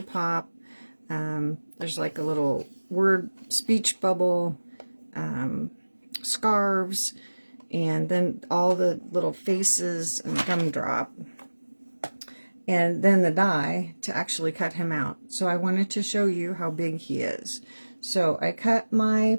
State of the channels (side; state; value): both; inverted; correlation -1.00